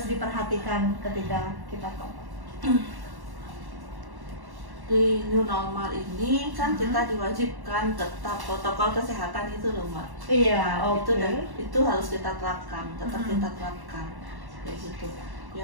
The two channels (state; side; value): late; left; 1.1 ms